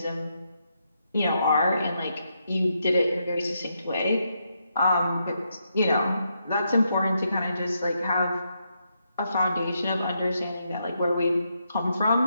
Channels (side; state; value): both; inverted; correlation -0.80